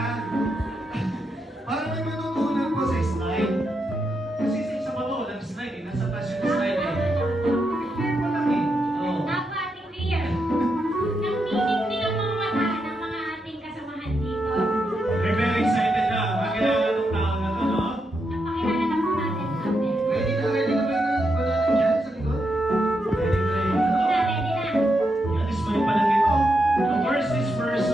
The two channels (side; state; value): both; normal; correlation 0.83